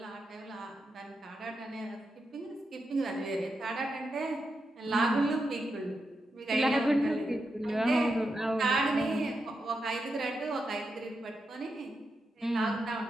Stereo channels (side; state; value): both; normal; correlation 0.86